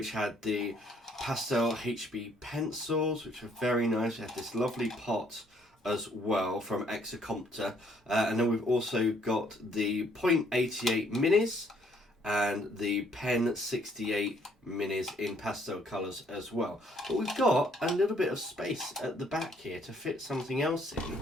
had the pastel HB pencils, which are very nice. We have this lovely pot as well from Exacompta, and then we've also got the .88 minis and the Pen 68 minis in pastel colours as well. But we've got a little bit of space at the back here to fit something else in,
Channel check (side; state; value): both; normal; correlation 0.65